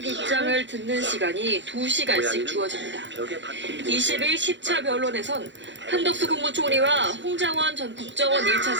입장을 듣는 시간이 2시간씩 주어집니다. 20일 10차 변론에선 한덕수 국무총리와 홍장원 전 국정원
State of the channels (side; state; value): left; late; 0.53 ms